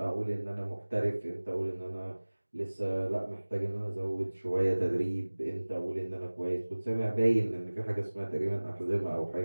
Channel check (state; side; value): inverted; both; correlation -1.00